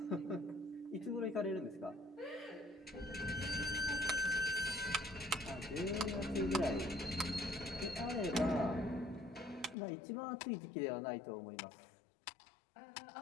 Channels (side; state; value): right; drops out; at 9.8 s